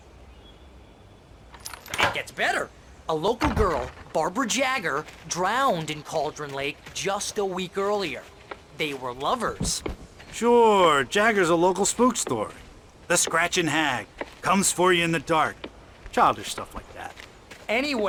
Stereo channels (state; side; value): identical; both; correlation 1.00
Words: It gets better. A local girl, Barbara Jagger, drowned in Cauldron Lake just a week earlier. They were lovers. Sure, Jagger's a local spook story. The Scratching Hag comes for you in the dark. Childish stuff like that.